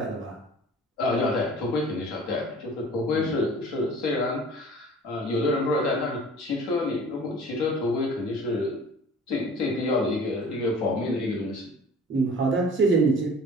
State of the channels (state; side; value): normal; both; correlation 0.45